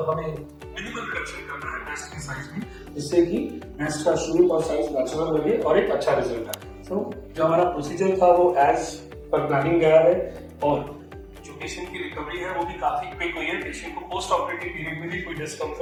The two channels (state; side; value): identical; both; correlation 1.00